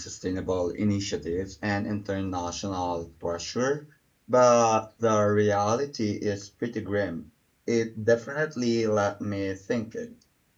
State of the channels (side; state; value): both; identical; correlation 1.00